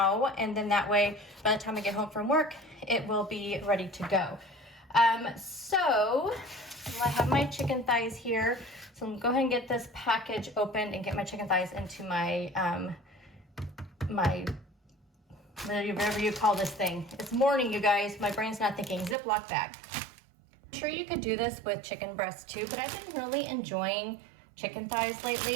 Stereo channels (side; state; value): left; drops out; at 19.2 s